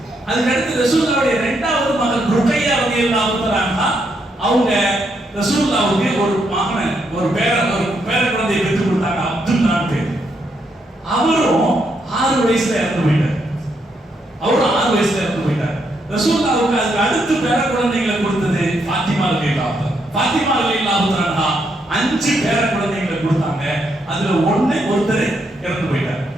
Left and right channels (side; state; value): both; normal; correlation 0.77